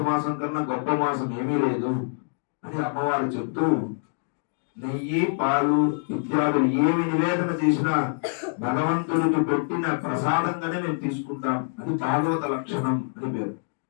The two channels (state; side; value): silent; right; digital silence